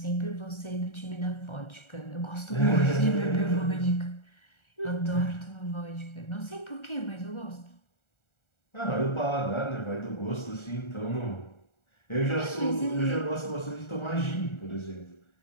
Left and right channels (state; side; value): late; right; 1.4 ms